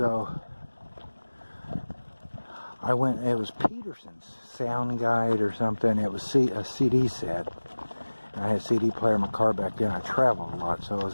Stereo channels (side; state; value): both; inverted; correlation -1.00